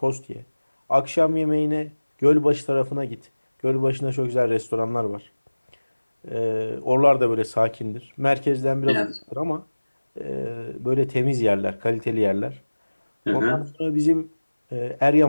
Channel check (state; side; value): inverted; both; correlation -1.00